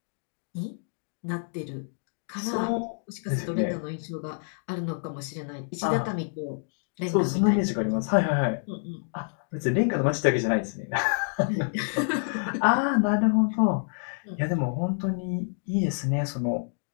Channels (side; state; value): right; silent; digital silence